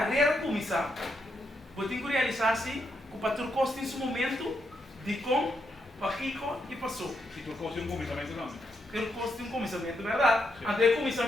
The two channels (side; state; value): both; normal; correlation 0.80